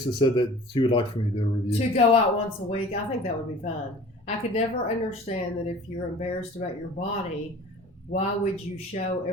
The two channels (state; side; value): normal; both; correlation 0.45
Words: said that she would like for me to do a review. To go out once a week, I think that would be fun. I could never understand that if you're embarrassed about your body, why would you show